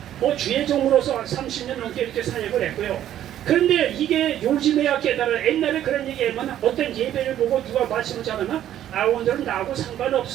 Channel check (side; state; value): left; quieter; 11.6 dB